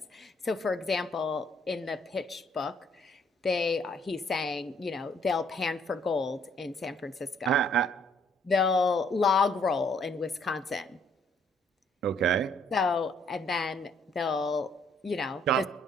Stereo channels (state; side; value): normal; both; correlation 0.65